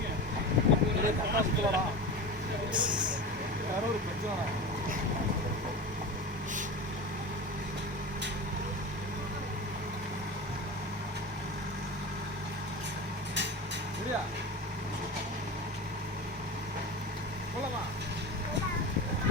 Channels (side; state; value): both; normal; correlation 0.28